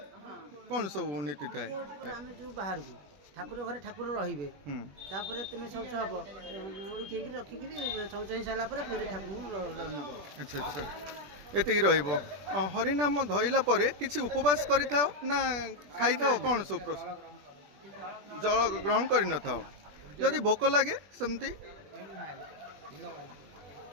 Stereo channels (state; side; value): late; left; 20 ms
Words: କ'ଣ ସବୁ ନୀତି ଥାଏ? ଆମେ ଯେଉଁ ବାହାରକୁ ଠାକୁର ଘରେ ଠାକୁର ରହିବେ, ତାପରେ ତୁମେ ଶୌଚ ହବ, ଓଳିକି ରଖିକିରି ଶୌଚ ହେଇସାରିଲା ପରେ ଫେରେ ଠାକୁରଙ୍କୁ ନେବ। ଆଚ୍ଛା ଆଚ୍ଛା, ଏତିକି ରହିବ। ହରିନାମ ଧଇଲା ପରେ କିଛି ଉପବାସ କରିଥାଅ ନା ଖାଇଥାଅ? କ'ଣ ସବୁ ଜଳ ଗ୍ରହଣ କରିନଥାଅ? ଯଦି ଭୋକ ଲାଗେ ସେମିତି